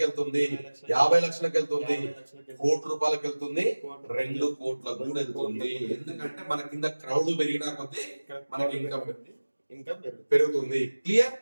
వెళ్తుంది, 50 లక్షలకు వెళ్తుంది, 50 లక్షలకి, కోటి రూపాయలకు వెళ్తుంది, 2 కోట్లకు కూడా వెళ్తుంది. ఎందుకంటే మన కింద క్రౌడ్ పెరిగినా కొద్దీ మనకి ఇన్కమ్ ఇన్కమ్ పెరుగుతుంది. క్లియర్?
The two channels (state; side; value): inverted; both; correlation -1.00